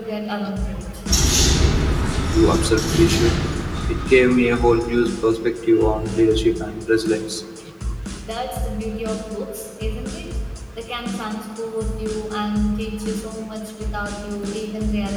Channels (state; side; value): identical; both; correlation 1.00